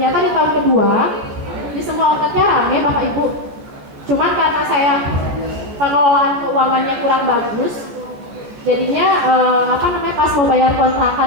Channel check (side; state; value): left; late; 14 ms